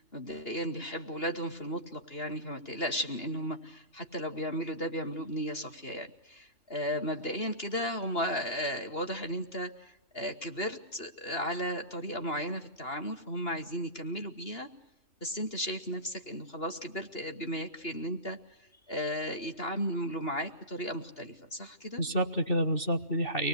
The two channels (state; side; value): late; right; 2.9 ms